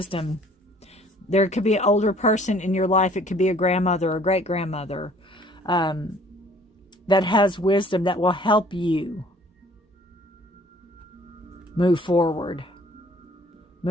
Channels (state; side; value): normal; both; correlation 0.56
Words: There could be an older person in your life. It could be a grandmother or great-grandmother that has wisdom that will help you move forward.